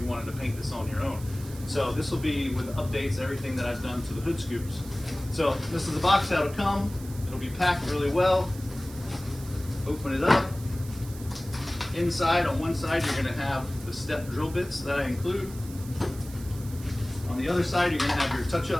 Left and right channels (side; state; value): right; noise; hiss, 17 dB below the sound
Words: wanted to paint this on your own. So this will be with updates, everything that I've done to the hood scoops. So this is the box how it'll come. It'll be packed really well. Open it up. Inside, on one side, you're gonna have the step drill bits that I include. On the other side, you're gonna have your